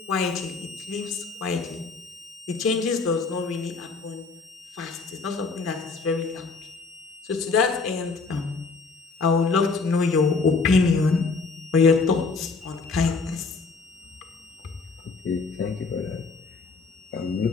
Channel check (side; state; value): right; quieter; 4.4 dB